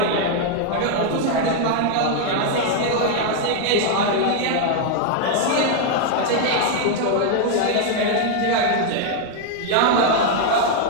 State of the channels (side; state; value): both; different; correlation 0.00